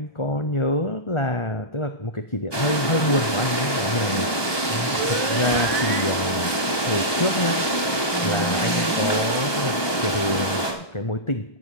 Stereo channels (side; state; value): right; late; 1.2 ms